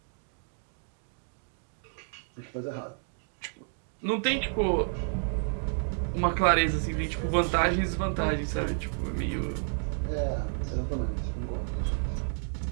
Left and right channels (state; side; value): silent; left; 57 dB below the other